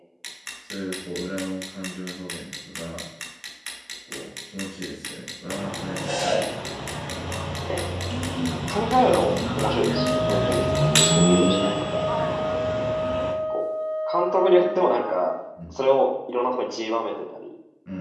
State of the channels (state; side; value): identical; both; correlation 1.00